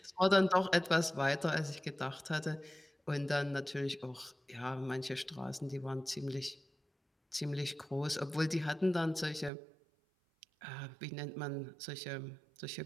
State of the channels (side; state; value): left; drops out; at 9.5 s